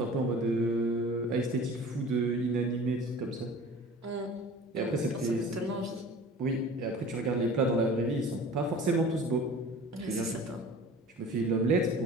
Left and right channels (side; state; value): both; normal; correlation 0.42